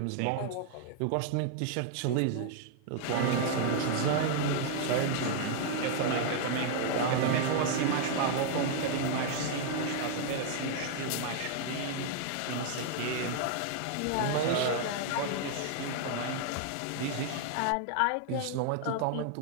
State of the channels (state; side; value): different; both; correlation 0.00